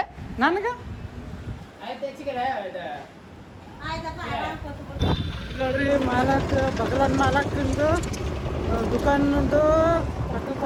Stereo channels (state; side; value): identical; both; correlation 1.00